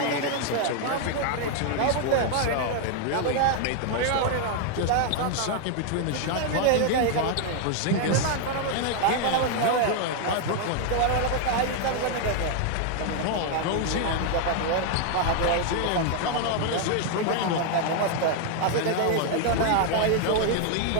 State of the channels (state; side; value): different; both; correlation 0.00